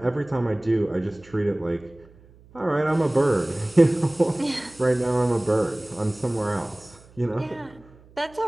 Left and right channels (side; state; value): right; noise; hum, 26 dB below the sound